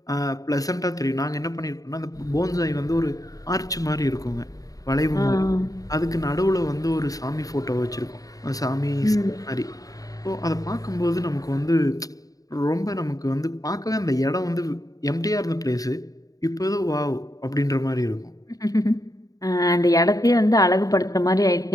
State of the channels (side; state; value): right; late; 0.17 ms